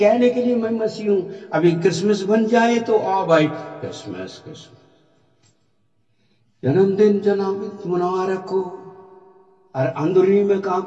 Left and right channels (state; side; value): identical; both; correlation 1.00